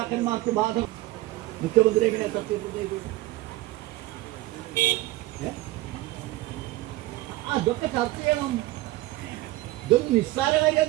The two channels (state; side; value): quieter; left; 18.1 dB